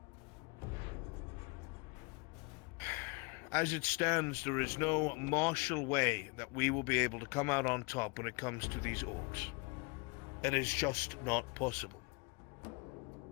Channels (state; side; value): quieter; right; 29.6 dB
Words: As it stands, there is no martial way that we will be able to come out on top when it comes to these orcs. It is just not possible.